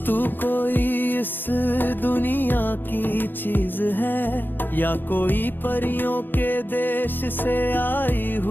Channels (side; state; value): right; late; 0.094 ms